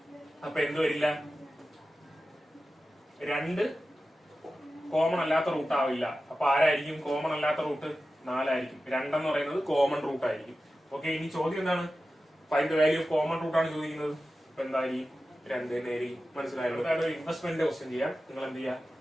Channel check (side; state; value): both; normal; correlation 0.94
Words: അപ്പൊ എന്ത് വരില്ല? 2 കോമൺ അല്ലാത്ത റൂട്ട് ആവില്ല. അപ്പൊ ആരായിരിക്കും കോമൺ അല്ലാത്ത റൂട്ട്? 4 ആയിരിക്കും. 2 എന്ന് പറയുന്നത് കോമൺ റൂട്ട് ആയിരിക്കും. ഓക്കെ, ഇനി ചോദ്യം എന്താണ്? Find the value of common root ആണ് ചോദിക്കുന്നത്. അപ്പൊ എന്തായിരിക്കും? 2 നേരി. മനസ്സിലായല്ലോ. ഒരു ഇൻവെസ്റ്റ്മെന്റ് ക്വസ്റ്റ്യൻ ചെയ്യാം. നിങ്ങൾ എന്ത് ചെയ്യുക?